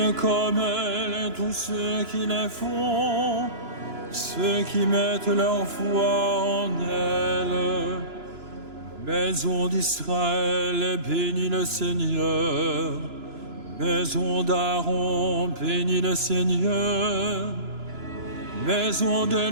comme elles tous ceux qui les font, ceux qui mettent leur foi en elles. Maison d'Israël, bénis le Seigneur. Maison d'Aaron, bénis le Seigneur. Maison de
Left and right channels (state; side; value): late; left; 2.9 ms